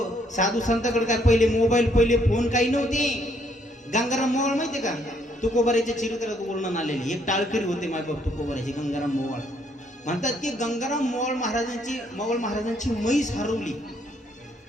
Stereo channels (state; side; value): normal; both; correlation 0.69